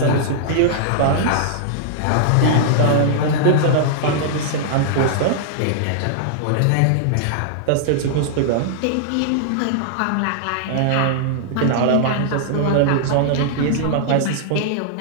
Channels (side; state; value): both; different; correlation -0.01